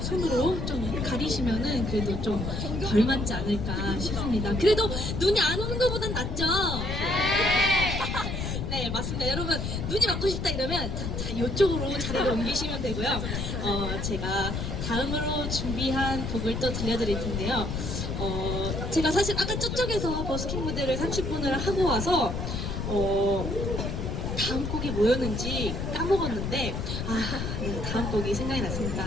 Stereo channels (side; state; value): left; noise; rumble, 3 dB below the sound